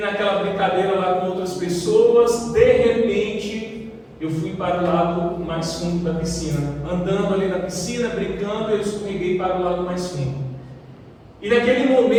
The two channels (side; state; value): both; identical; correlation 1.00